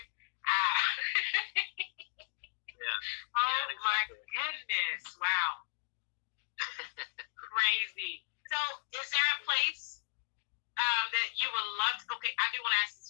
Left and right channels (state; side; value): silent; right; digital silence